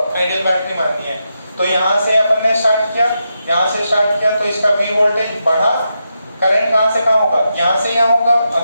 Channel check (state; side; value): inverted; both; correlation -0.85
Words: आइडियल बैटरी माननी है। तो यहाँ से अपन ने स्टार्ट किया, तो इसका V वोल्टेज बढ़ा, करंट कहाँ से कहाँ होगा? यहाँ से यहाँ होगा,